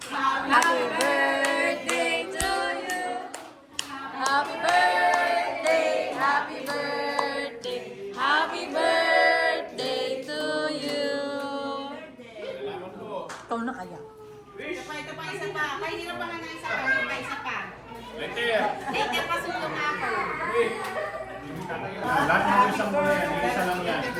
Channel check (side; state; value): both; identical; correlation 1.00